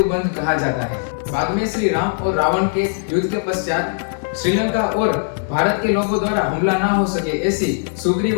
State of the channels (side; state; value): right; silent; 66 dB below the other